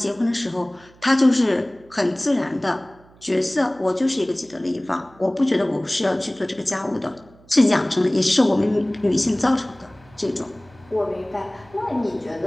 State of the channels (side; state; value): right; noise; hum, 27 dB below the sound